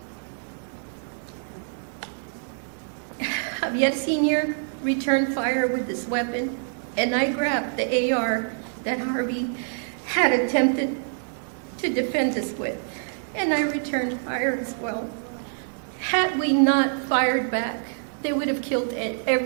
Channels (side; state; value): left; silent; digital silence